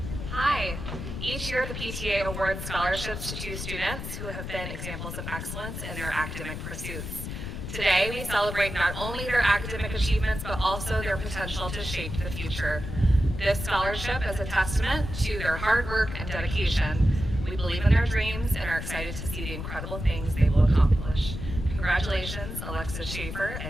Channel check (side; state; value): left; noise; rumble, 7 dB below the sound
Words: Hi. Each year, the PTA awards scholarships to 2 students who have been examples of excellence in their academic pursuits. Today, we celebrate not only their academic achievements, but also their potential to shape the future. This scholarship is a testament to their hard work and dedication. We believe in their dreams and are excited to see the incredible things they will accomplish. Congratulations, Alexis Schaefer